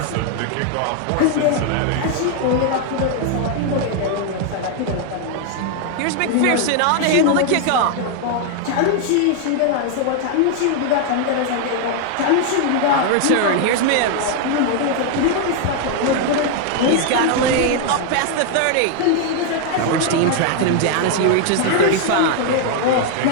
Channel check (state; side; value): different; both; correlation 0.00